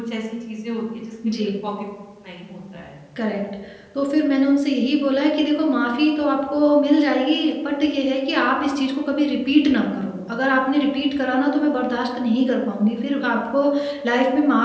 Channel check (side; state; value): both; identical; correlation 1.00